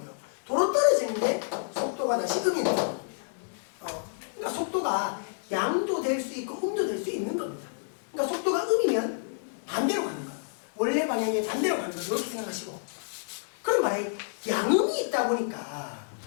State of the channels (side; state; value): right; silent; digital silence